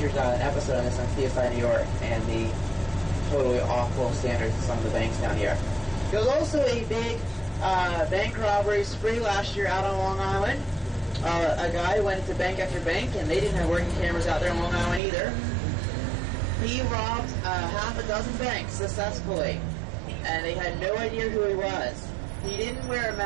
an episode on this on CSI New York and the totally awful standards of some of the banks down here. There was also a big bank robbery spree last year out on Long Island. A guy went into bank after bank, and they didn't have working cameras out there on Long Island either. He robbed half a dozen banks successfully, and they had no idea who he was. He didn't wear a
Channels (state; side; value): drops out; left; at 15.0 s